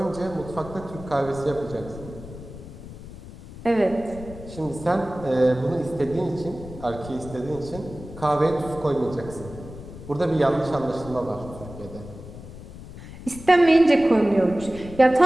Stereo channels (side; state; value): left; noise; rumble, 14 dB below the sound